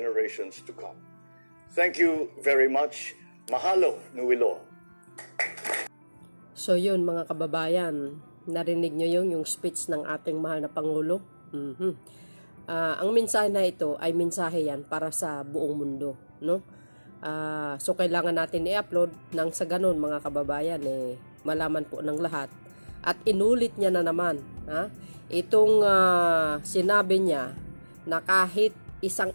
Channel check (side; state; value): both; inverted; correlation -1.00